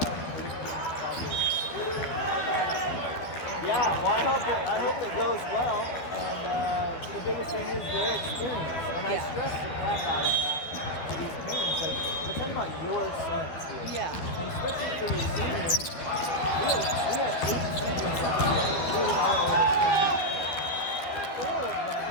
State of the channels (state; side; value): late; right; 12 ms